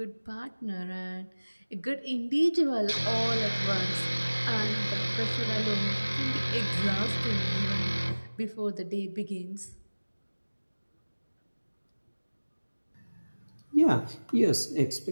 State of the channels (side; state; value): both; inverted; correlation -1.00